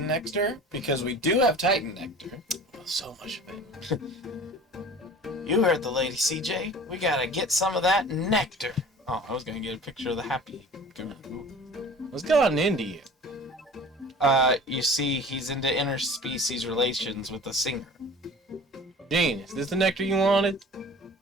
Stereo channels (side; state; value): both; normal; correlation 0.42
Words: nectar? Because we do have Titan nectar. Oh, so much of it. You heard the lady, CJ. We gotta get some of that nectar. Oh, I was gonna get a picture of the happy Garoo. What's gotten into you? You see, he's into interspecies relations with a singer. Gene, is this the nectar you wanted?